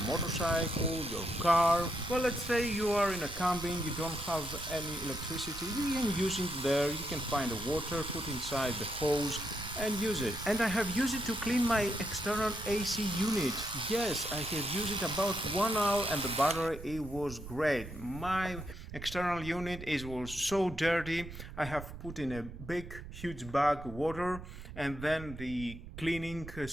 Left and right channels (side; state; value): right; noise; rumble, 12 dB below the sound